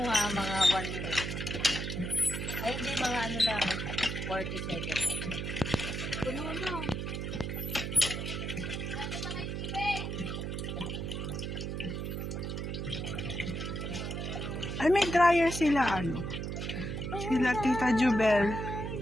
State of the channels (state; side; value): noise; right; hum, 3 dB below the sound